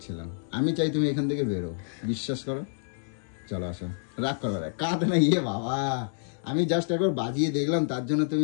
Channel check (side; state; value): right; silent; 59 dB below the other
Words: আমি চাই তুমি এখান থেকে বেরো, বিশ্বাস করো। চলো আসো, রাগ করো, কাঁদ না, ইয়ে বাবা, আমি জাস্ট একবার বাজিয়ে দেখলাম, তার জন্য তুমি